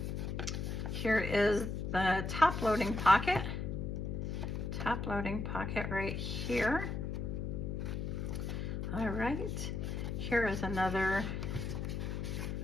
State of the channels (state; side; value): noise; left; hum, 3 dB below the sound